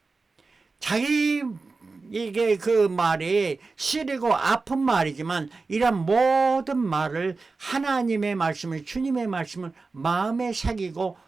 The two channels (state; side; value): quieter; left; 4.0 dB